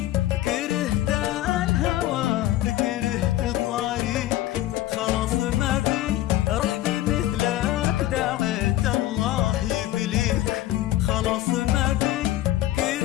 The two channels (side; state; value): right; quieter; 14.8 dB